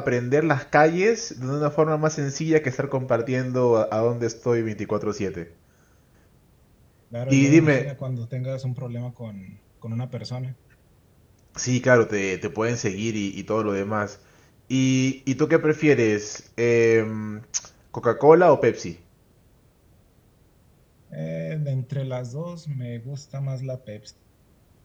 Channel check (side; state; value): both; identical; correlation 1.00